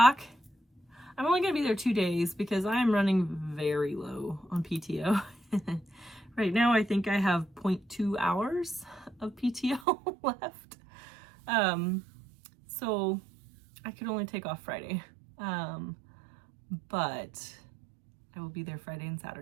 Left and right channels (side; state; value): left; drops out; at 9.9 s